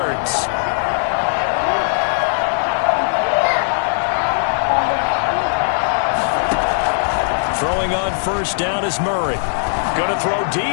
Throwing on first down is Murray. Going to throw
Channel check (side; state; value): right; silent; digital silence